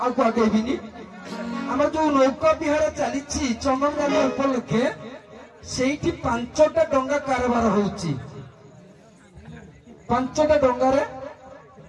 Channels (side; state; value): both; identical; correlation 1.00